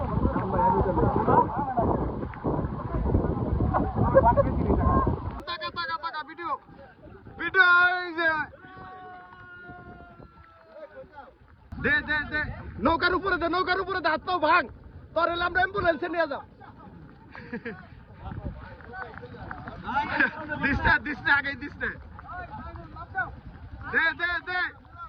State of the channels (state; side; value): identical; both; correlation 1.00